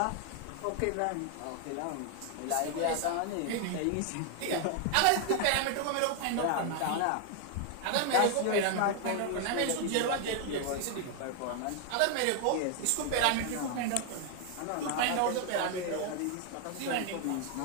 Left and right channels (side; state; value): both; different; correlation 0.00